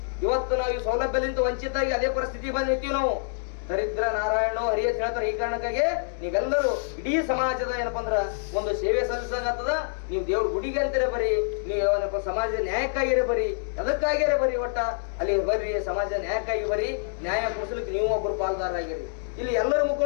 ಇವತ್ತು ನಾವು ಈ ಸೌಲಭ್ಯದಿಂದ ವಂಚಿತಾಗಿ ಅದೇ ಪರಿಸ್ಥಿತಿ ಬಂದಿರ್ತೀವಿ ನಾವು. ದರಿದ್ರ ನಾರಾಯಣೋ ಹರಿ ಅಂತ ಹೇಳ್ತಾರೆ. ಈ ಕಾರಣಕ್ಕಾಗಿ ನೀವೆಲ್ಲರೂ ಇಡೀ ಸಮಾಜದ ಏನಪ್ಪಾ ಅಂದ್ರ ಒಂದು ಸೇವೆ ಸಲ್ಲಿಸಾಗತ್ತದ. ನೀವು ದೇವ್ರ ಗುಡಿಗೆ ಅಂತೀರ ಬರೀ, ನೀವು ಏನಪ್ಪ ಸಮಾಜದ ನ್ಯಾಯಕ್ಕಾಗಿರೇ ಬರೀ, ಎದಕ್ಕಾಗಿರೇ ಬರೀ, ಒಟ್ಟ ಅಲ್ಲಿ ಬರ್ರಿ, ಸಮಾಜದ ನ್ಯಾಯಕ್ಕಾಗಿ ಬರೀ. ನ್ಯಾಯ ಕೊಡಿಸ್ಲಿಕ್ಕೆ ನೀವು ಒಬ್ಬರು ಪಾಲ್ದಾರಾಗಿರಿ. ಇಲ್ಲಿ ಎಲ್ಲರೂ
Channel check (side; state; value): right; silent; digital silence